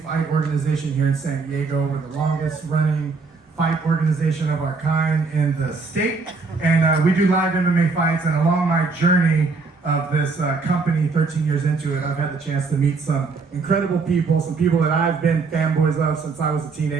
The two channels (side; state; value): left; quieter; 4.3 dB